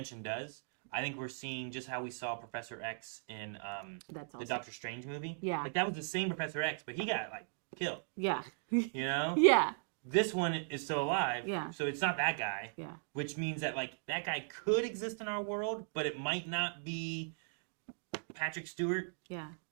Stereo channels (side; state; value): left; silent; digital silence